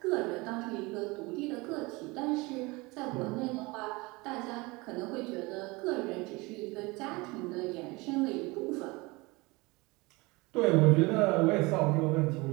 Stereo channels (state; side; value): quieter; left; 24.3 dB